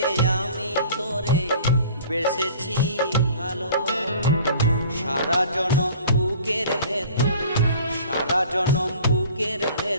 আমি তোরে বেসেছি ভালো। সারা জনম বুকের ভেতর, সারা জনম বুকের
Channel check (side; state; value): both; inverted; correlation -0.47